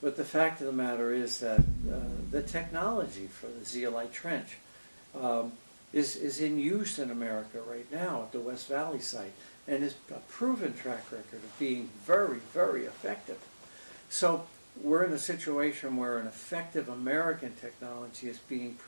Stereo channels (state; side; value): inverted; both; correlation -1.00